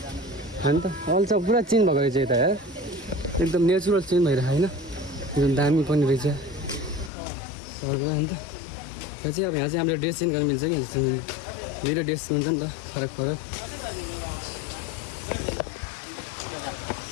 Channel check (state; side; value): drops out; right; at 7.1 s